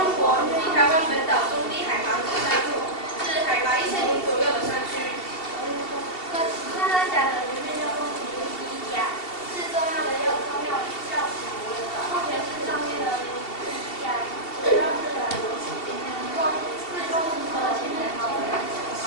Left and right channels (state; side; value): late; right; 2.7 ms